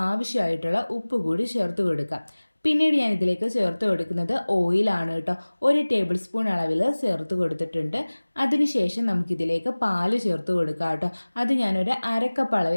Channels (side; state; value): both; inverted; correlation -1.00